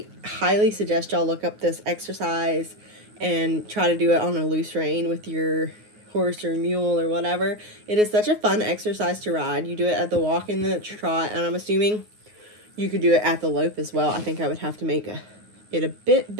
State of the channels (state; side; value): late; left; 9.5 ms